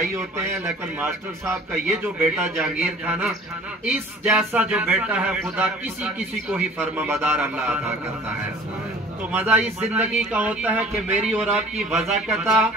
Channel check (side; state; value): both; normal; correlation 0.48